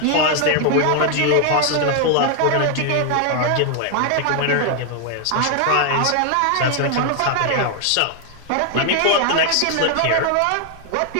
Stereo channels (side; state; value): both; different; correlation 0.00